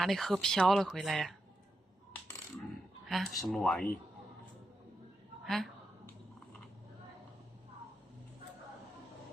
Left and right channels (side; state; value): both; normal; correlation 0.87